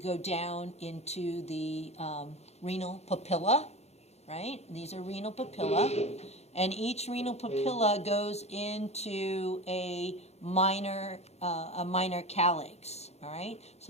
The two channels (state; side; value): late; right; 0.31 ms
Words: down into the renal papilla, right? These are renal papilla. And each renal papilla goes into a minor calyx, all right?